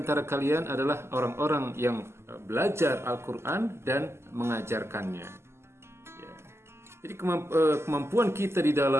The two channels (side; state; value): left; late; 0.12 ms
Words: kalian adalah orang-orang yang belajar Al-Quran dan mengajarkannya. Ya. Jadi kemampuan kita di